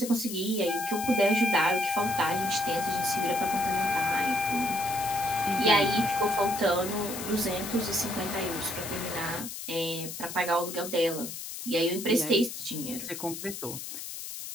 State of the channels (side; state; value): left; noise; hiss, 8 dB below the sound